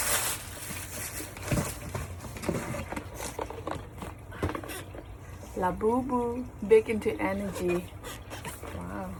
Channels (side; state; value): both; identical; correlation 1.00